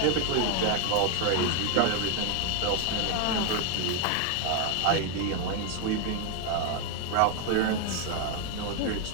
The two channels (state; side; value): different; both; correlation 0.00